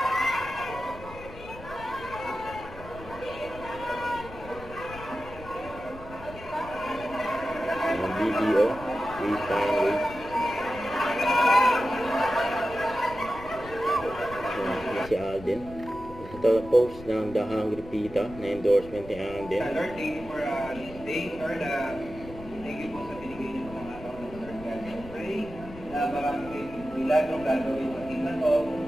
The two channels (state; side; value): noise; left; rumble, 15 dB below the sound